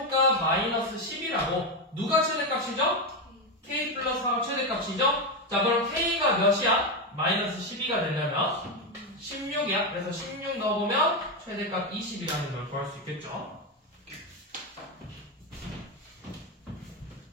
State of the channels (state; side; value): normal; both; correlation 0.10